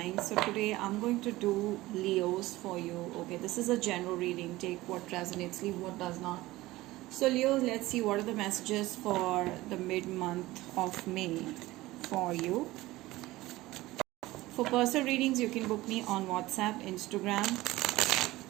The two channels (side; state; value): left; quieter; 18.3 dB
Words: So today I'm going to do Leos for you. Okay, this is a general reading. Take what resonates, leave what does not. So Leos, let's see what are the messages for the mid-month of May for you. For personal readings, you can book me on WhatsApp, Instagram,